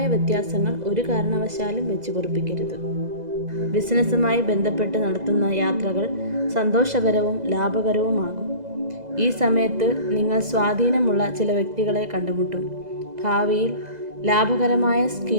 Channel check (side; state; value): left; late; 2.0 ms